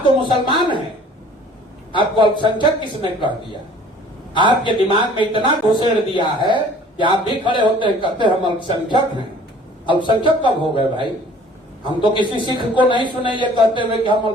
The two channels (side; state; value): both; normal; correlation 0.51